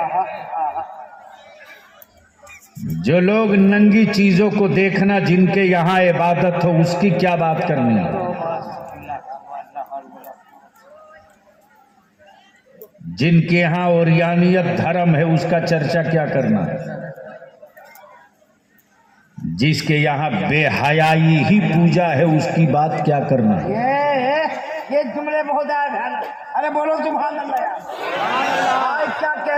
जो लोग नंगी चीजों को देखना जिनके यहाँ इबादत हो उसकी क्या बात करनी है। जिनके यहाँ ओरियानियत धर्म है उसका चर्चा क्या करना। जिसके यहाँ बेहयाई ही पूजा है उसकी बात क्या करना। ये जुमले बहुत आए। अरे बोलो सुभान अल्लाह यार।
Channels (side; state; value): both; identical; correlation 1.00